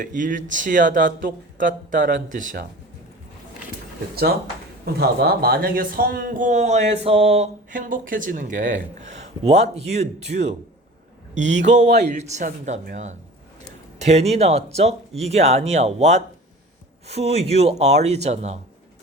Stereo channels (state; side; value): normal; both; correlation 0.40